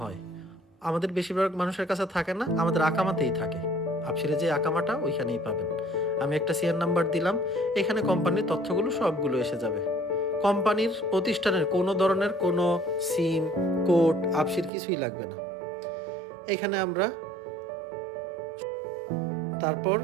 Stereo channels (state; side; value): drops out; left; at 14.7 s